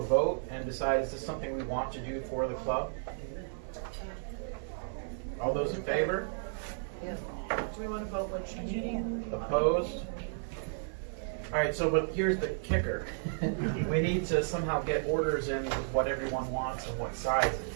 vote and decide is this something we want to do for the club? All those in favor? Yeah. Do we want to vote which meeting? Opposed? All right, so but here's the kicker. We need to somehow get orders in with what everyone wants and what sizes.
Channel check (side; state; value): left; silent; 56 dB below the other